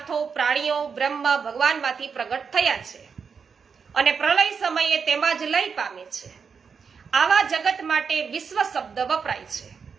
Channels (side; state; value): left; quieter; 6.0 dB